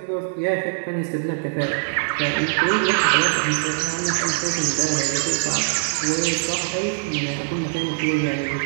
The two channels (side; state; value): left; silent; 64 dB below the other